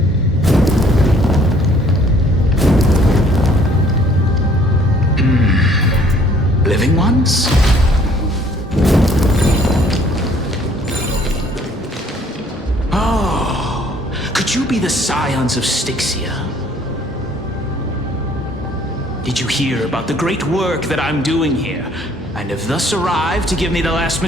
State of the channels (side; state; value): both; normal; correlation 0.59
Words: Living ones? Oh, could you be the scions of Styxia? Did you hear about the great work that I'm doing here, and have thus arrived to give me the last